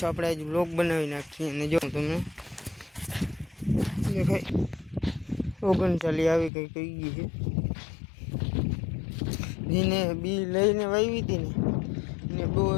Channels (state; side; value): drops out; right; at 6.5 s